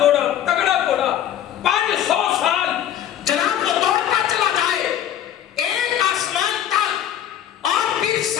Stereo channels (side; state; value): right; quieter; 10.7 dB